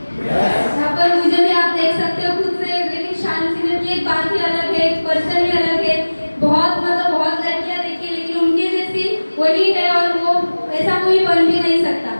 यहाँ पर मुझे भी आप देख सकते हो खुद से, लेकिन शालीन सीनियर की एक बात ही अलग है, एक पर्सन ही अलग है। बहुत मतलब बहुत लड़कियां देखी लेकिन उनके जैसी वही है और वो ऐसा कोई बन भी नहीं सकता।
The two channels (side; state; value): both; inverted; correlation -1.00